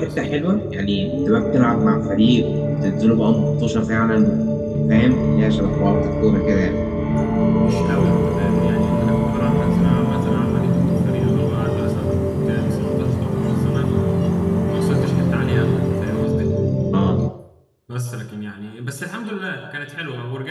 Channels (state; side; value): identical; both; correlation 1.00